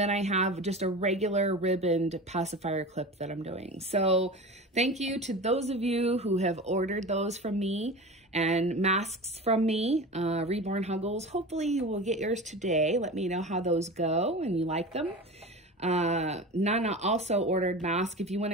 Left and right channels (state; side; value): normal; both; correlation 0.31